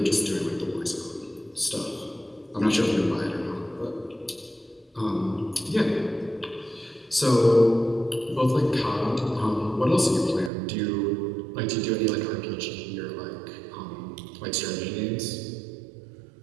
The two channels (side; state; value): left; drops out; at 10.5 s